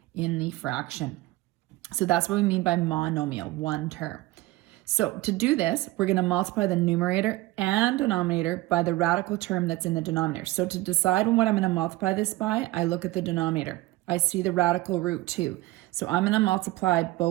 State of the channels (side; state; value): left; quieter; 18.7 dB